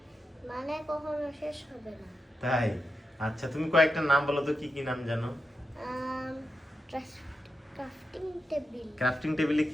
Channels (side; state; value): both; normal; correlation 0.88